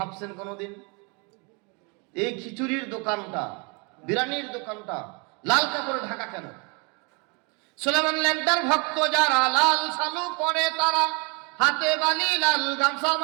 কোনোদিন? এই খিচুড়ির দোকানটা, বিরানির দোকানটা লাল কাপড়ে ঢাকা কেন? সুলাইমান ল্যাংটার ভক্ত যারা, লাল শালু পরে তারা, হাতে বালি, লাল গামছা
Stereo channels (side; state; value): left; quieter; 32.3 dB